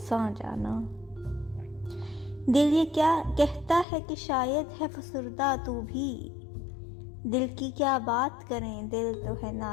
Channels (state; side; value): drops out; right; at 3.9 s